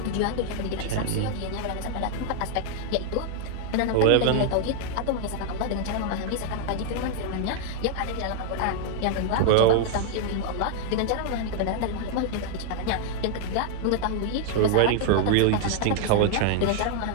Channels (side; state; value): both; different; correlation 0.00